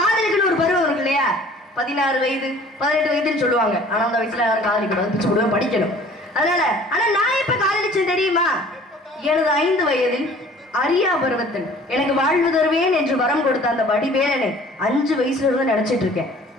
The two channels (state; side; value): normal; both; correlation 0.50